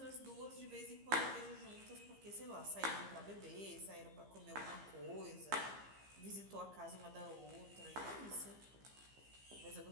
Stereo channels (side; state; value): left; late; 15 ms